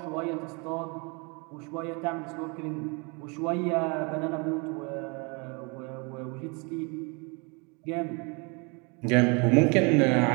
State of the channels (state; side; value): quieter; left; 31.3 dB